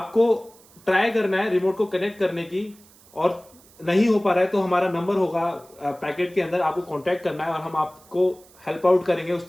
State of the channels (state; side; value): noise; right; hiss, 26 dB below the sound